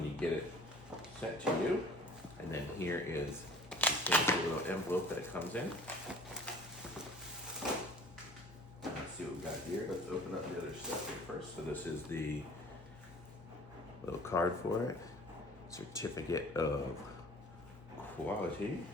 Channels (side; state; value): both; normal; correlation 0.47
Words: you get it sent to you. And then here is the little envelope that it comes in. Let's see what we got here. Let's open up the other stuff here first. So this is the little card for it. Certificate of quality.